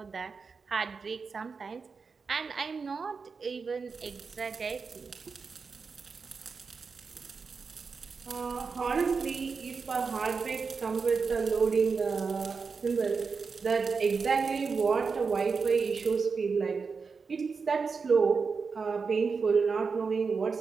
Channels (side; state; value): left; quieter; 5.0 dB